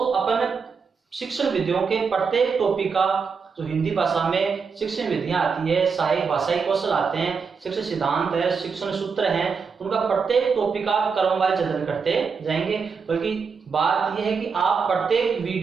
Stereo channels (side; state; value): left; quieter; 5.5 dB